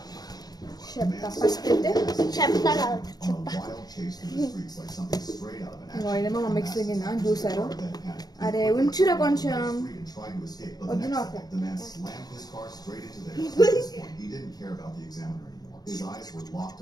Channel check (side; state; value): right; late; 0.19 ms